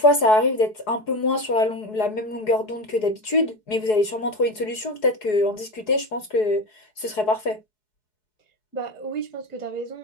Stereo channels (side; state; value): right; late; 4.7 ms